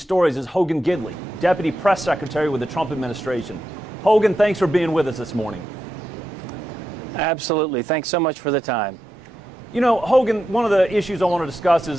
is Hogan Gidley, Deputy Press Secretary with the Trump administration. Hogan, thanks for being with us this morning. Absolutely. Thanks so much for the time. You know, Hogan, one of the issues I want to discuss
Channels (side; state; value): both; normal; correlation 0.87